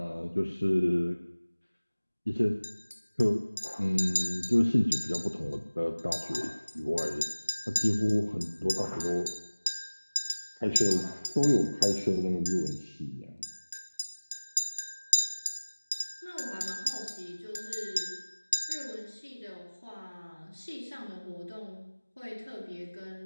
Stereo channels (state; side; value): inverted; both; correlation -1.00